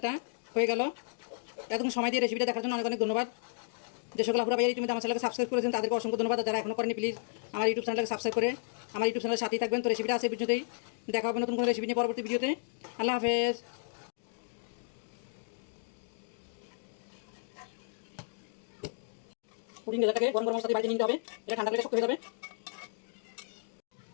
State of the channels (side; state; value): right; silent; digital silence